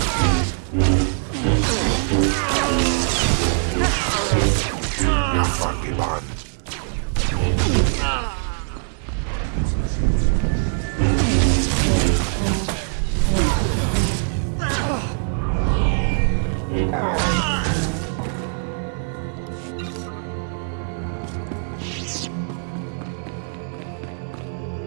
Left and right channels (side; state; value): left; silent; 64 dB below the other